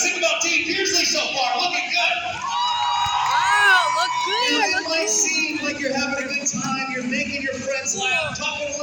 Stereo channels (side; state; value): both; identical; correlation 1.00